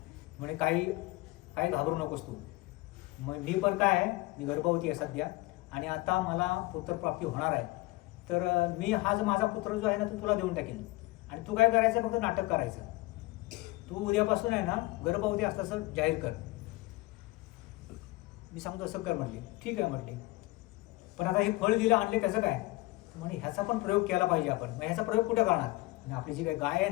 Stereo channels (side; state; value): right; quieter; 21.1 dB